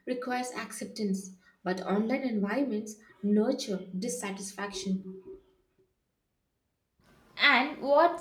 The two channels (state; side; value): identical; both; correlation 1.00